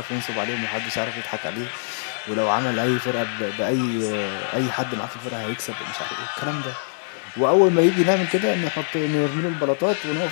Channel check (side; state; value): right; silent; 63 dB below the other